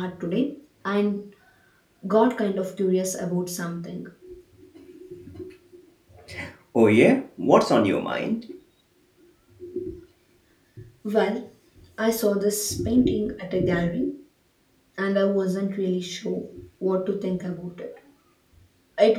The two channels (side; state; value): both; identical; correlation 1.00